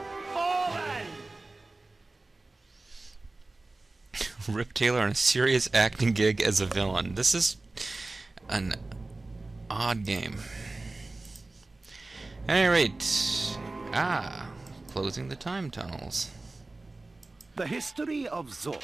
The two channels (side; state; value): left; quieter; 3.2 dB